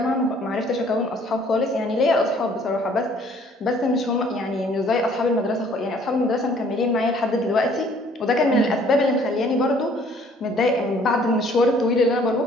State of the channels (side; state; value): both; normal; correlation 0.58